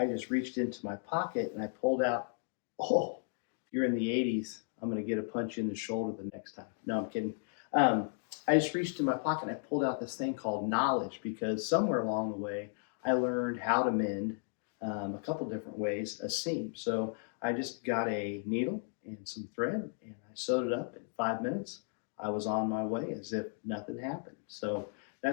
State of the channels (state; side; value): silent; right; 55 dB below the other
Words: just reached into my pocket and I pulled out. Oh, if you're in the 80s, I'm going to get a punch in the shoulder the next time. No, I'm kidding. I just reached in my pocket and I pulled out this thing called knowledge because somewhere along the way I learned how to mend a couple different ways a seam. So I just got a needle and some thread and I sewed it up in 5 minutes. I was on my way as if nothing happened. So